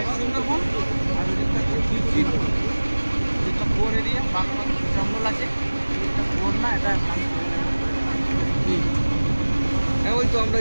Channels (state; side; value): inverted; both; correlation -1.00